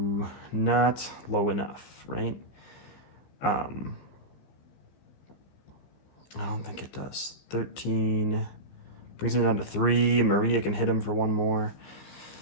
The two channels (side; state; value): right; late; 15 ms